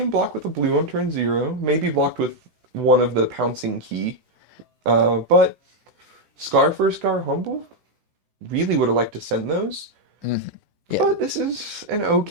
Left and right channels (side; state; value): left; late; 16 ms